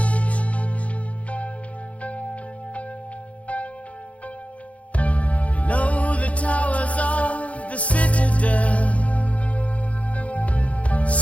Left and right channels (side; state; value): right; late; 0.065 ms